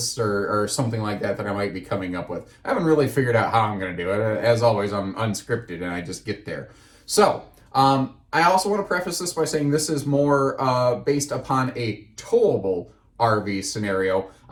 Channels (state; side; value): identical; both; correlation 1.00